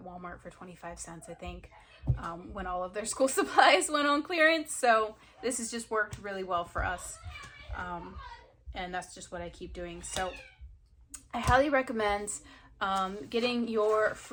Walmart for 25 cents, I think, when all of their school supplies went on clearance. So this has just worked really well for us. And that's just what I keep doing. So I highly recommend getting your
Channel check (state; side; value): identical; both; correlation 1.00